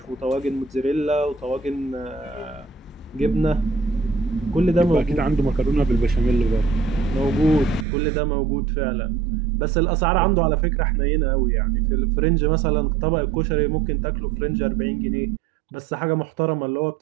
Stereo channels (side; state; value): left; drops out; at 7.9 s